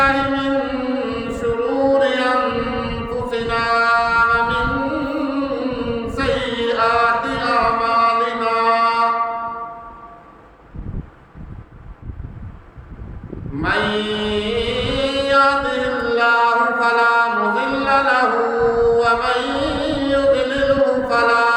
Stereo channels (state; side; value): identical; both; correlation 1.00